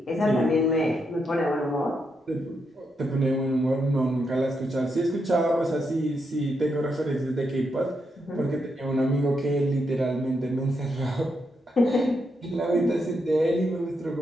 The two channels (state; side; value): normal; both; correlation 0.81